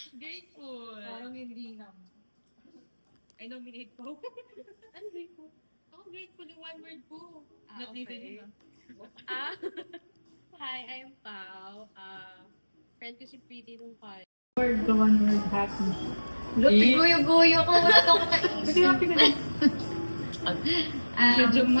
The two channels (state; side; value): inverted; both; correlation -1.00